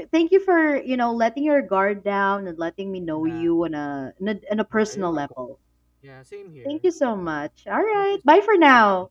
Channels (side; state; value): both; identical; correlation 1.00